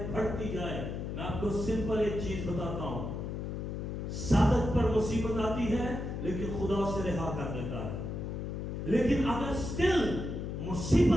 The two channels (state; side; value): noise; left; hum, 4 dB below the sound